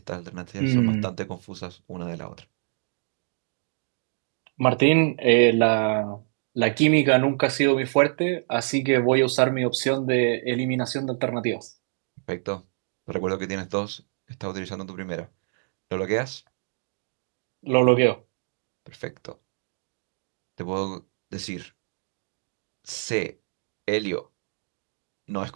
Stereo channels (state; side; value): silent; left; digital silence